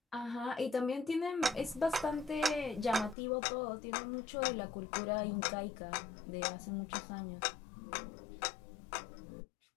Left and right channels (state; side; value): drops out; right; at 3.2 s